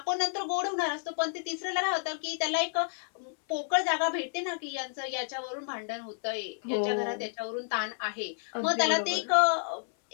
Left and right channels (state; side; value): silent; right; 57 dB below the other